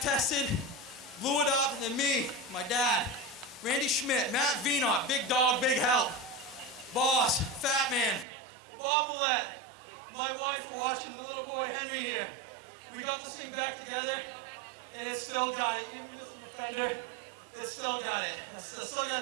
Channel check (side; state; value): left; drops out; at 8.2 s